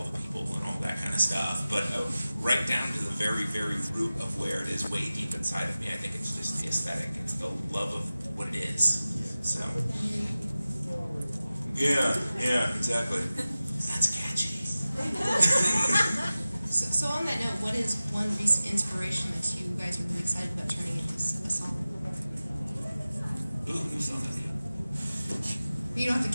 the people and all that kind of stuff. But right down to the very, very root of where it is, way deep inside of me, I think it's just the aesthetic. It's the love of what it is. So. Yeah, exactly. That's catchy. So on that note, what is one recent inspiration that you guys are really excited about turning into a song? Ooh, new song. You don't have to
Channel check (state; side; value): inverted; both; correlation -0.96